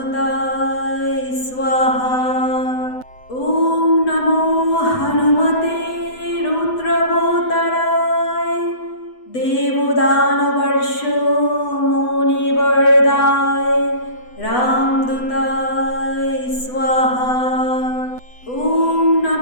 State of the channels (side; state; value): right; late; 8.0 ms